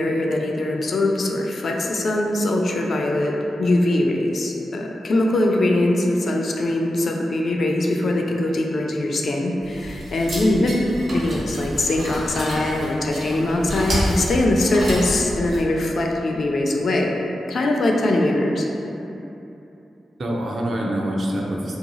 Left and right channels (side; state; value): both; normal; correlation 0.89